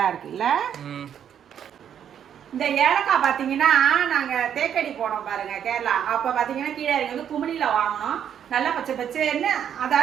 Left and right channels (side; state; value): left; quieter; 9.0 dB